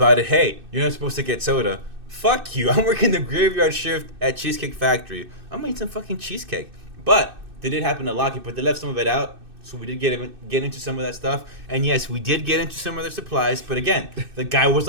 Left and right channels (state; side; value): late; left; 2.6 ms